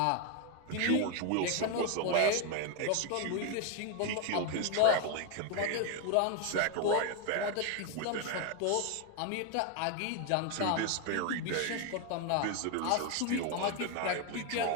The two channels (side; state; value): both; different; correlation 0.01